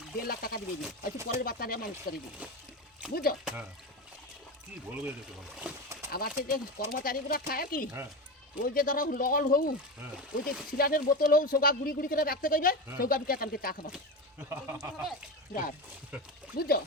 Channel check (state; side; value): normal; both; correlation 0.20